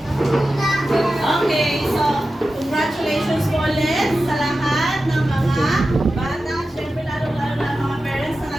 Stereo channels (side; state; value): both; normal; correlation 0.93